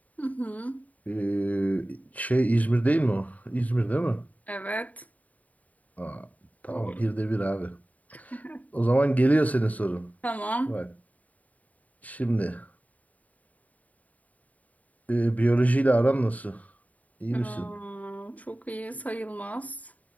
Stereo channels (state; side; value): late; right; 0.071 ms